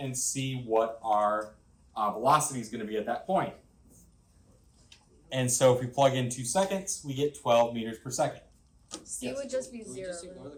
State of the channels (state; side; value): identical; both; correlation 1.00